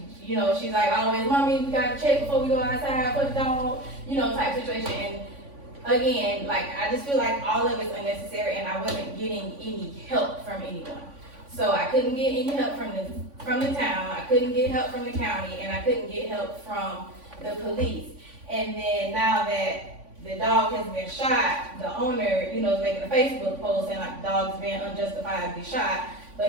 She's like always, mommy, we gotta check before we go outside, put the dog, you know, type situation. And again, like, I just feel like all of it's unnecessary and I wasn't getting any help from anyone. So I couldn't get any help from the town, I couldn't get help from the county, and I couldn't get help from the police. And then now that the dog has been shot, the owner, you know, is making a Facebook post saying like the dog's been unjustifiably shot,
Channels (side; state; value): left; late; 3.5 ms